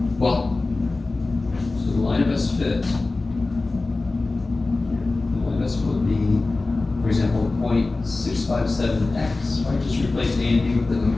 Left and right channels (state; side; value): quieter; right; 3.4 dB